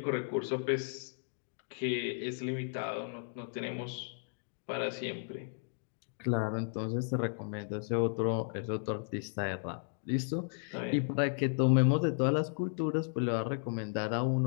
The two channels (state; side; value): silent; right; digital silence